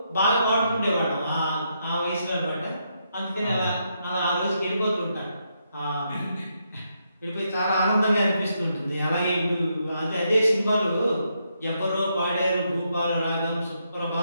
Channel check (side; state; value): both; inverted; correlation -0.79